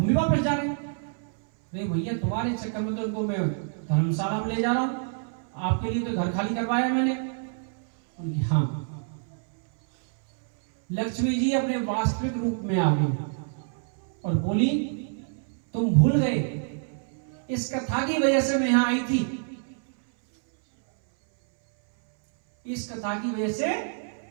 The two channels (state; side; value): silent; left; 60 dB below the other